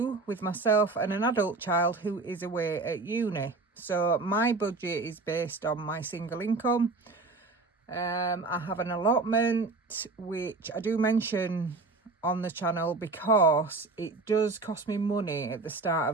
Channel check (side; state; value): left; quieter; 3.6 dB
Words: with myself and an adult child who is away at uni. So my budget is based on my single income. I have an allotment, which I do mention on the channel because it does cost me money at the start